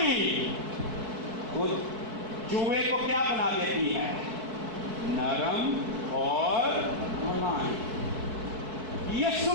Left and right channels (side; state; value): left; late; 4.6 ms